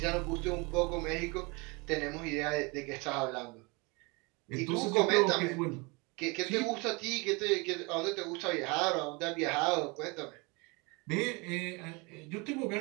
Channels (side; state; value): left; quieter; 28.0 dB